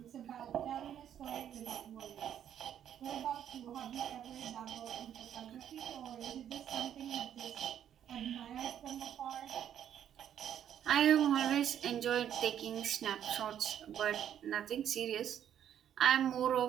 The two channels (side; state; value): left; quieter; 9.9 dB